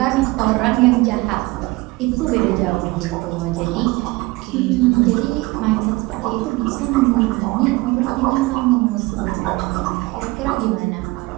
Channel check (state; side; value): quieter; left; 22.2 dB